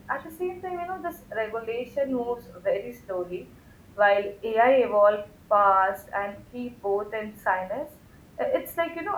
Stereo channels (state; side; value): identical; both; correlation 1.00